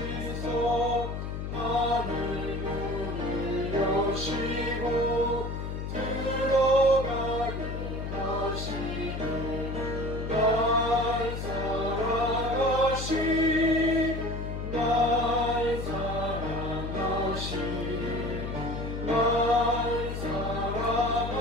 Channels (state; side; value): noise; left; hum, 5 dB below the sound